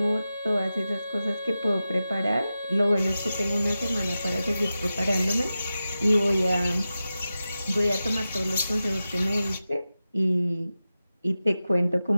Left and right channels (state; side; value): inverted; both; correlation -0.93